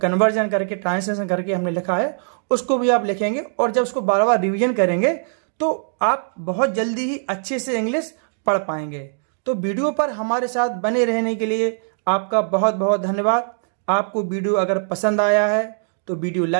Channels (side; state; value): left; silent; digital silence